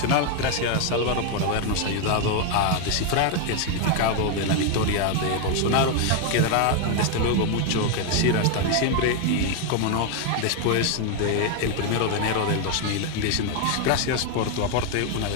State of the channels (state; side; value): different; both; correlation 0.01